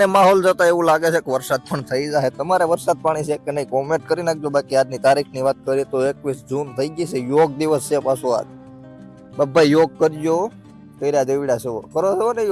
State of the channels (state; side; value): identical; both; correlation 1.00